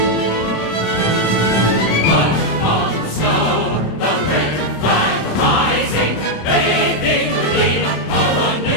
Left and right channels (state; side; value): late; right; 26 ms